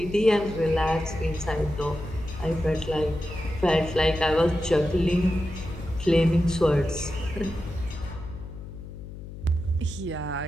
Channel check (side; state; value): left; noise; hum, 12 dB below the sound